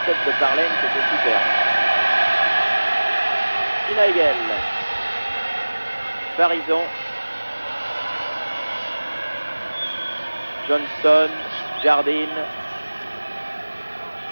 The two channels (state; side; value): inverted; both; correlation -1.00